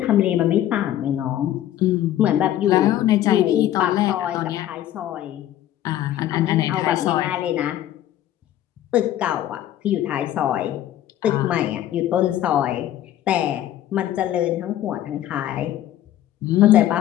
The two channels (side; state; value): right; quieter; 12.5 dB